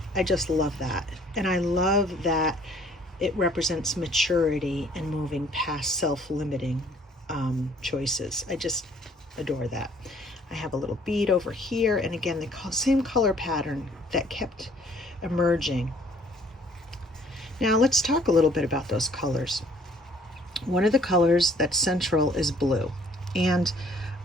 I just love that. And I love that it represents maturity and moving past self-limiting choices. I just adore that. I have a little bead over here, and again, the same color pattern that kept emerging. Now let's talk a little bit about those colors. One of the colors that's central is blue. And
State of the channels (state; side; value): normal; both; correlation 0.58